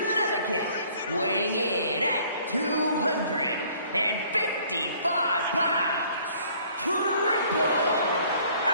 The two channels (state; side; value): inverted; both; correlation -0.57